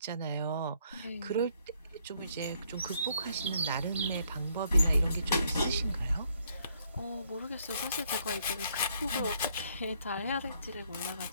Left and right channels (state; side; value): inverted; both; correlation -0.69